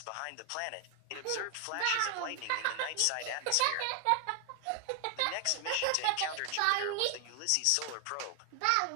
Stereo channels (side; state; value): both; different; correlation 0.00